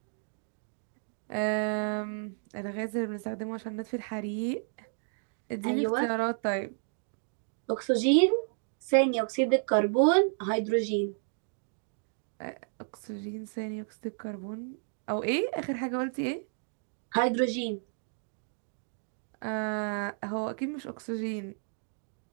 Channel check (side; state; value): left; silent; 56 dB below the other